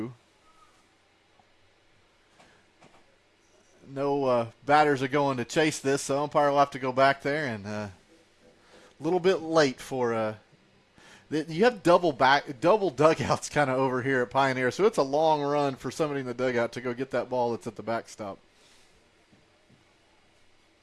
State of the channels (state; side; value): identical; both; correlation 1.00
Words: No batters are going to chase this, so umpire will have to go back there, and a little bit late for you have double dugouts kind of over here at Pioneer, so it's a long run for somebody in the dugout to go get that ball that's at the backstop.